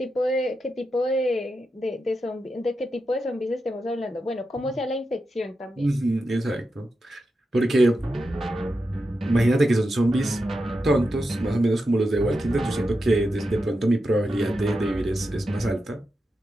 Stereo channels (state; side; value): normal; both; correlation 0.88